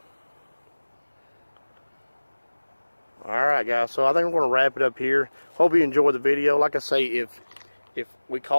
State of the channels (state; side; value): inverted; both; correlation -1.00